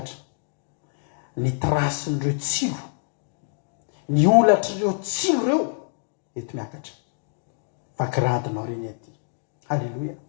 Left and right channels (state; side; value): silent; right; digital silence